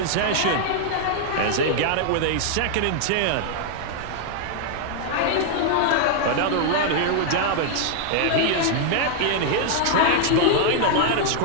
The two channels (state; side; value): different; both; correlation -0.01